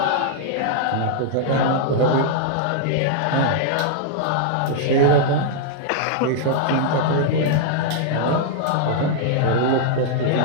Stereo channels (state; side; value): different; both; correlation -0.01